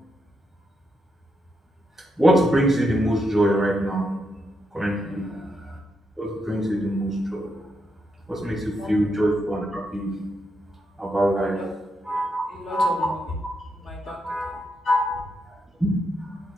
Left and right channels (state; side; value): normal; both; correlation 0.81